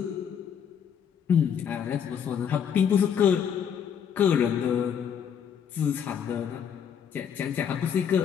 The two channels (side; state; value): right; quieter; 8.0 dB